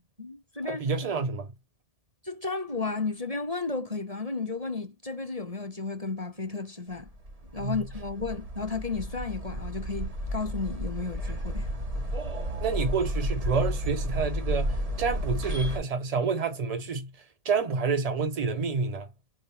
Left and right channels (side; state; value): left; late; 1.7 ms